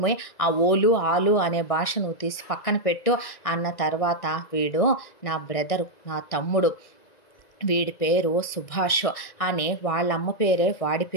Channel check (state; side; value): late; right; 1.9 ms